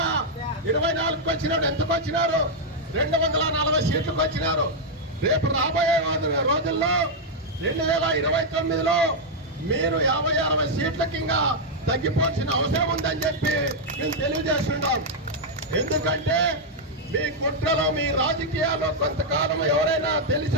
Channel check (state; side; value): normal; both; correlation -0.02